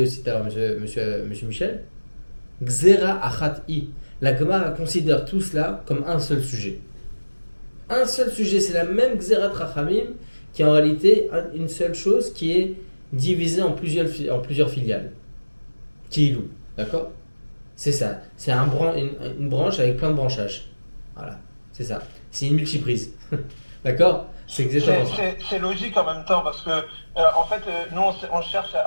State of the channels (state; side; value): inverted; both; correlation -1.00